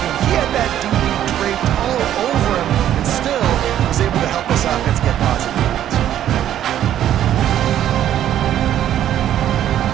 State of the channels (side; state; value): left; quieter; 11.3 dB